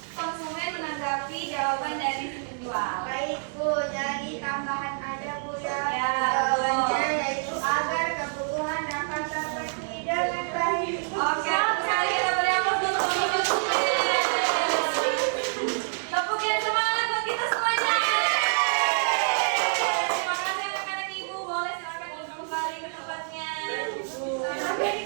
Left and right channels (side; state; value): left; silent; digital silence